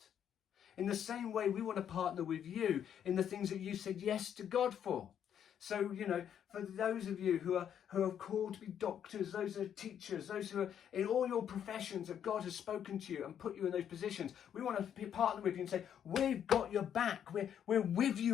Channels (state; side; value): quieter; right; 9.1 dB